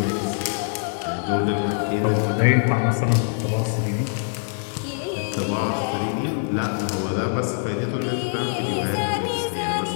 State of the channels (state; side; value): silent; right; 63 dB below the other